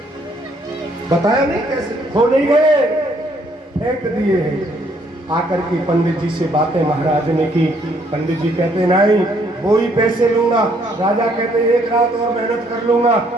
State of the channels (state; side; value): normal; both; correlation 0.67